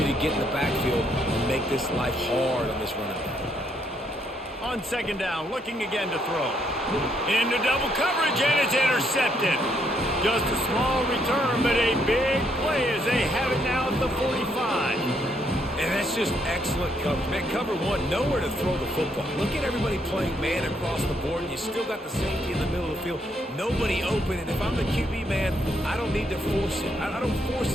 to get in the backfield and make this life hard on this running back. On 2nd down, looking again to throw. Into double coverage, and it's intercepted. Just a small return, but a big play as they have it now at the 45. And that's just excellent coverage. Man, cover one, nowhere to throw the football. Look at everybody playing man across the board, and you still got the safety in the middle of the field. Nobody open, and if I'm the QB, man, I don't need to force it. I don't force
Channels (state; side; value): normal; both; correlation 0.73